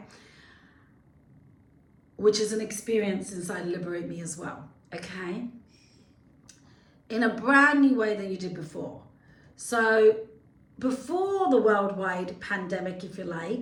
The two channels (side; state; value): both; identical; correlation 1.00